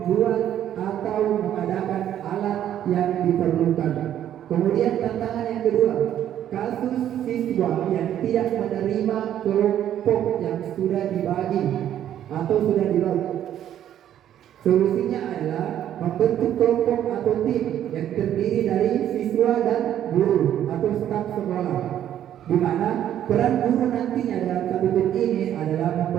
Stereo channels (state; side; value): quieter; left; 10.9 dB